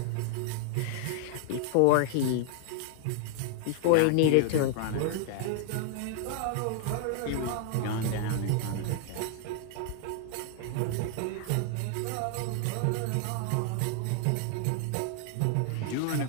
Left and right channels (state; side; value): different; both; correlation 0.00